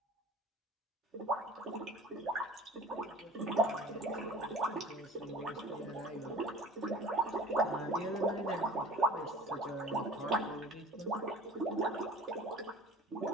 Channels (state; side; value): normal; both; correlation 0.43